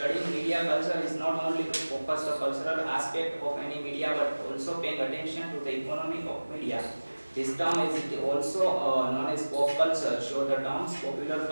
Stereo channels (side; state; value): both; inverted; correlation -1.00